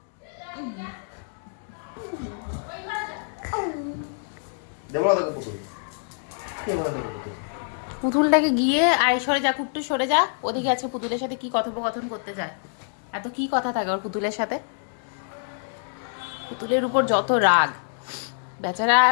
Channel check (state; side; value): silent; right; digital silence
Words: দেবো না পুতুল, পুতুলটাকে গিয়ে আয় সরে যা কুট্টু সরে যা। ওদিকে আজকে পুতুলের সাথে কি কথোপকথন করতে যায়। এত কি কথা থাকে ওর পুতুলের সাথে। পুতুলের উপর যত রাগ, বেচারা